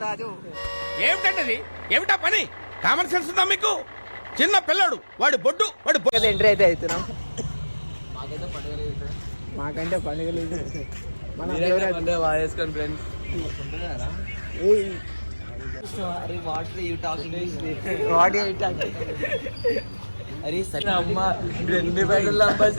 ఏమిటండి, ఏమిటా పని? కామన్ సెన్స్ ఉందా మీకు? చిన్న పిల్లడు, వాడు బొడ్డు ఎంట్రీ అయితే అవుతున్నాం. మాకంటే పండుగ లేదు.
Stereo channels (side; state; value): both; inverted; correlation -1.00